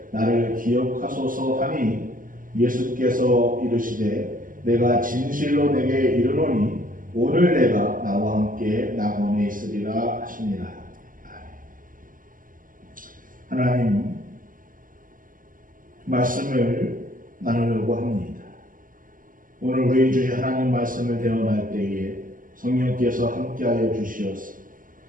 나를 기억하소서 하니 예수께서 이르시되 내가 진실로 내게 이르노니 오늘 내가 나와 함께 낙원에 있으리라 하시니라. 하나님 말씀을 나누려고 합니다. 오늘 우리 주의 하나님 말씀을 대언할 때에 성령께서 함께하여 주시어서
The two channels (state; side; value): late; left; 0.40 ms